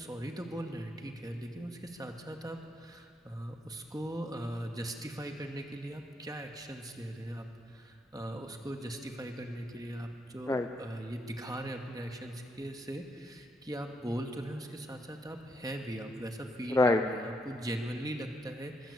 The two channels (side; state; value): both; normal; correlation 0.77